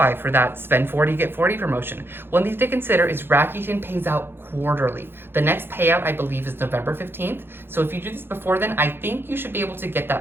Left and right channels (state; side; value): late; left; 0.10 ms